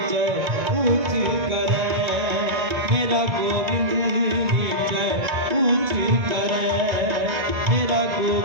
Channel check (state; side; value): late; left; 1.9 ms